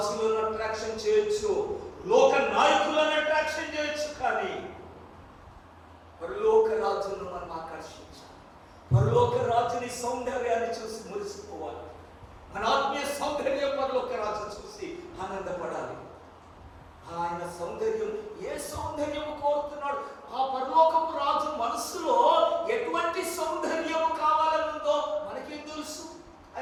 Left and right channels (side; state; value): both; identical; correlation 1.00